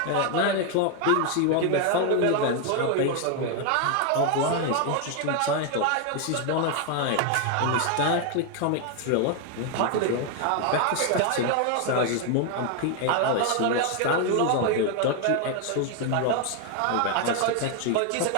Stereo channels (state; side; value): different; both; correlation 0.01